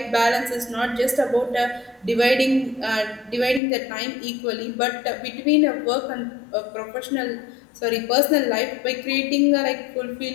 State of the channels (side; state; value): right; drops out; at 3.6 s